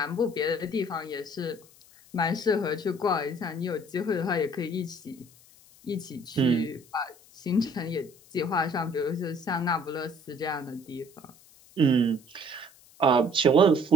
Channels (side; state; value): left; noise; hiss, 26 dB below the sound